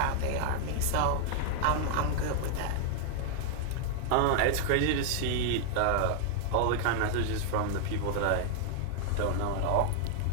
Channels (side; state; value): both; different; correlation 0.00